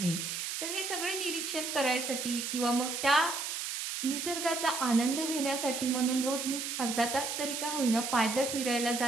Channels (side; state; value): right; noise; hiss, 4 dB below the sound